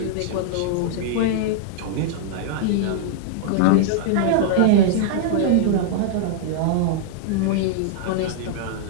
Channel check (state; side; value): different; both; correlation -0.01